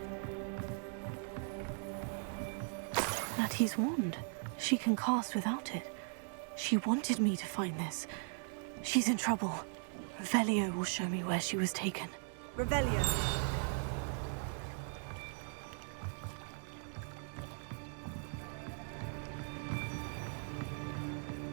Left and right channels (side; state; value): left; silent; 52 dB below the other